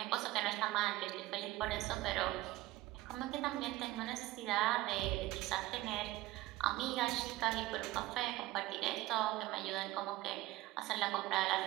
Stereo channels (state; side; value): quieter; left; 17.4 dB